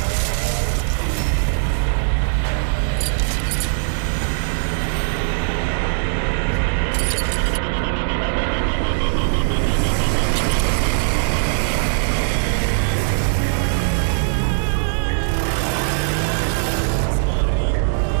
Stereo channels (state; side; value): silent; left; 64 dB below the other